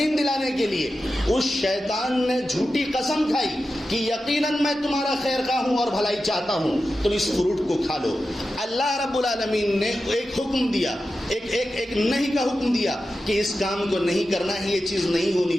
دلانے کے لیے اس شیطان نے جھوٹی قسم کھائی کہ یقیناً میں تمہارا خیر خواہ ہوں اور بھلائی چاہتا ہوں تم اس فروٹ کو کھا لو. اللہ رب العالمین نے ایک حکم دیا ایک نہیں کا حکم دیا کہ اس کام کو نہیں کرنا ہے یہ چیز نہیں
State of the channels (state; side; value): normal; both; correlation 0.92